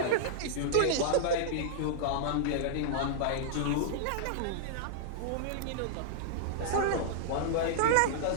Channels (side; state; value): both; different; correlation -0.01